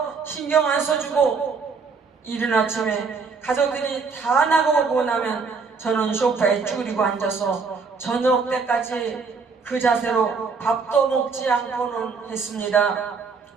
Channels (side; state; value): left; quieter; 5.0 dB